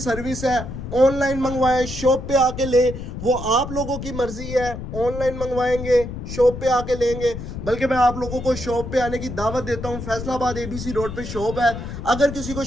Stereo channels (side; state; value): left; noise; rumble, 8 dB below the sound